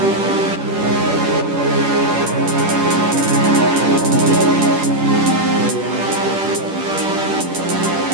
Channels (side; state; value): left; late; 10 ms